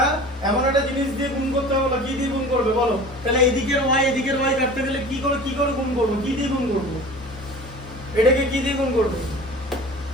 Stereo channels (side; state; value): both; normal; correlation 0.40